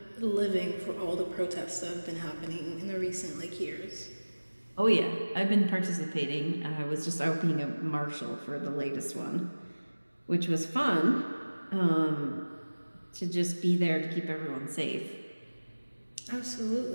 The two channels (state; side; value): inverted; both; correlation -1.00